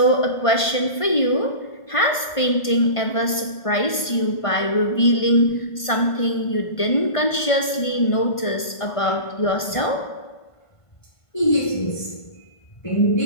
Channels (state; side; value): late; right; 1.5 ms